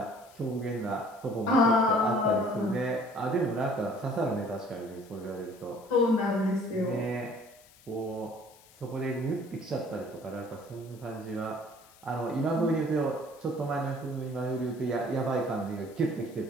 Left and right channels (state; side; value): noise; left; hiss, 25 dB below the sound